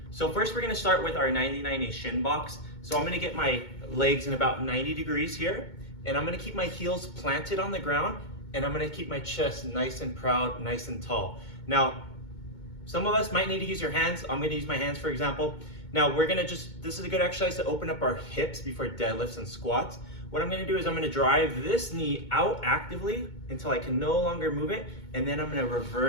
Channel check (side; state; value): right; late; 2.2 ms